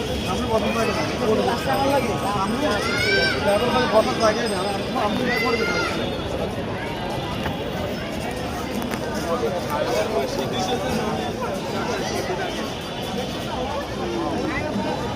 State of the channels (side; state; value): both; identical; correlation 1.00